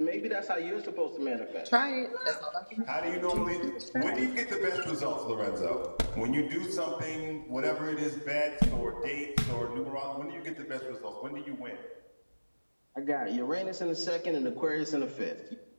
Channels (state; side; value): inverted; both; correlation -1.00